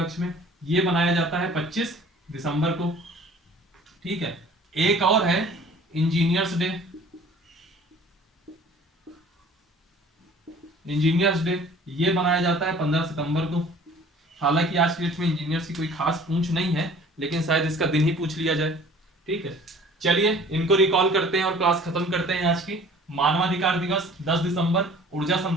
में, ये मनाया जाता है 25 दिसंबर को, ठीक है। एक और है इंजीनियर्स डे, इंजीनियर्स डे, ये मनाया जाता है 15 सितंबर को। हालांकि आज की डेट में इंजीनियर्स की कोई खास पूछ नहीं है, लेकिन शायद इसका दिन ही पूछ लिया जाए, ठीक है। चलिए इनको रिकॉल करते हैं और क्लास खत्म करते हैं आज की। मानवाधिकार दिवस 10 दिसंबर, ऊर्जा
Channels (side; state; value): both; normal; correlation 0.49